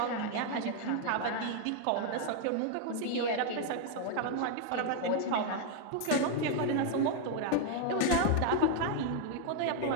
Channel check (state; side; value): different; both; correlation 0.00